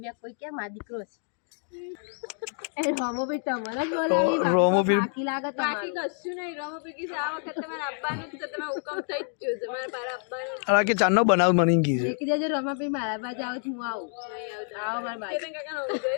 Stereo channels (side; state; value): right; silent; 59 dB below the other